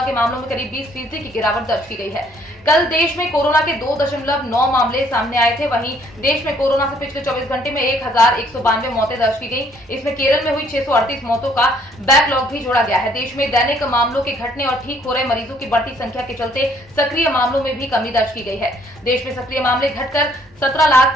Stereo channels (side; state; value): both; normal; correlation 0.64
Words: के मामलों में करीब 20% की गिरावट दर्ज की गई है। कल देश में कोरोना के 2.9 मामले सामने आए थे। वहीं देश में कोरोना से पिछले 24 घंटे में 1,192 मौतें दर्ज की गई। इसमें केरल में हुई 638 मौतों का बैकलॉग भी जोड़ा गया है। देश में दैनिक मामलों के घटने और ठीक हो रहे मरीजों की बढ़ती संख्या के चलते सक्रिय मामलों में भी कमी दर्ज की गई है। देश में सक्रिय मामले घटकर